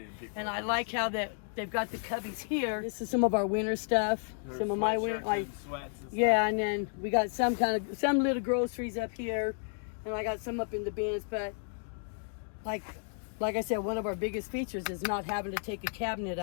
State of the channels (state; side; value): silent; right; 56 dB below the other